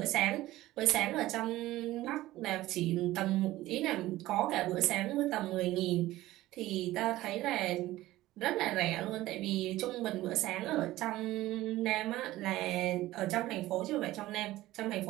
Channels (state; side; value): quieter; left; 16.5 dB